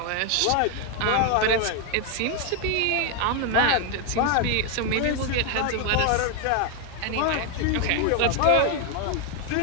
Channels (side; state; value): both; different; correlation 0.01